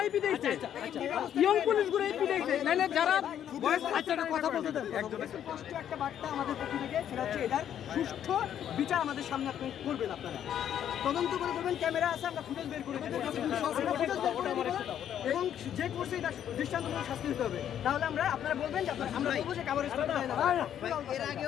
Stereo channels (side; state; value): right; quieter; 9.9 dB